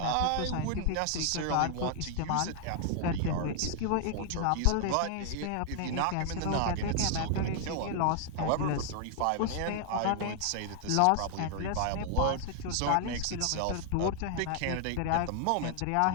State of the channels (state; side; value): different; both; correlation 0.00